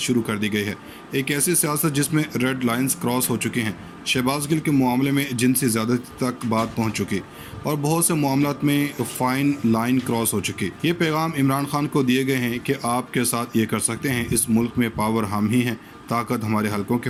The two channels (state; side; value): identical; both; correlation 1.00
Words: कर दी गई है। एक ऐसी सियासत जिसमें रेड लाइंस क्रॉस हो चुकी हैं। शहबाज गिल के मामले में जिनसी ज़्यादती तक बात पहुंच चुकी और बहुत से मामलात में फाइन लाइन क्रॉस हो चुकी। ये पैगाम इमरान खान को दिए गए हैं कि आपके साथ ये कर सकते हैं, इस मुल्क में पावर हम ही हैं, ताकत हमारे हलकों के